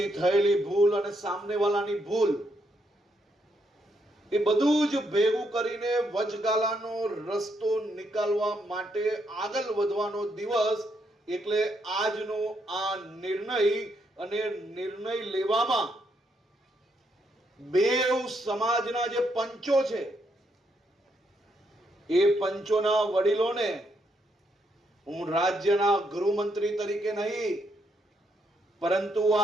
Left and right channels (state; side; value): normal; both; correlation 0.77